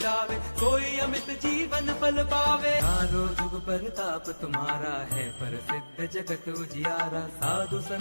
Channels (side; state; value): both; inverted; correlation -1.00